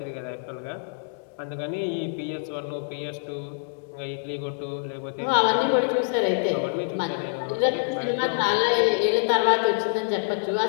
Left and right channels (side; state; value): right; silent; 61 dB below the other